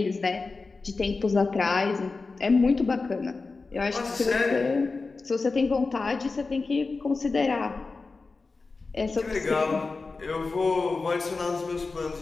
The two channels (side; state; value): right; quieter; 4.0 dB